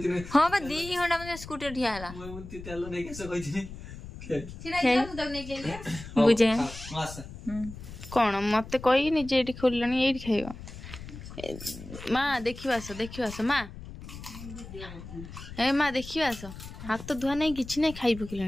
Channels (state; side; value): noise; left; rumble, 13 dB below the sound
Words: हां बा 2 घंटा में स्कूटर ठिया हला मुती तेल नहीं कैसे कहतिनी छिड़ाई जा मुदक नहीं केले बुझे मास कोन मते कहि नि जे एठी खोललनी एठी खाइबो मां देखिवास मां ए मां देखिवास हाथ तो धुआ नहीं किछि नहीं खाइ